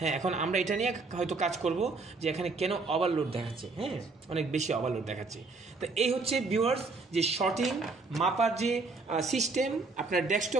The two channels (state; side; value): quieter; left; 3.8 dB